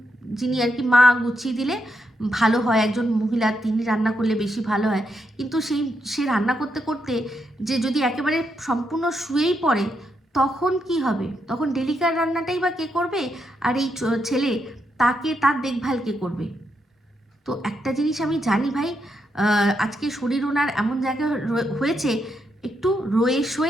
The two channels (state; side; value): normal; both; correlation 0.81